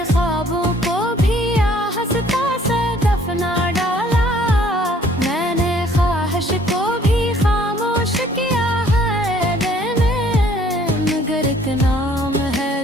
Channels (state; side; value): normal; both; correlation 0.59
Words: ख्वाबों को भी हंसता से दफना डाला, मैंने ख्वाहिश को भी खामोश किया है देने। मगर एक नाम है